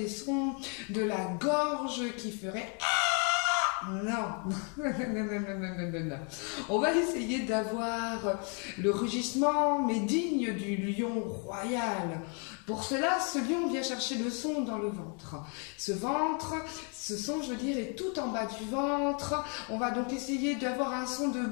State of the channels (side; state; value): right; quieter; 37.8 dB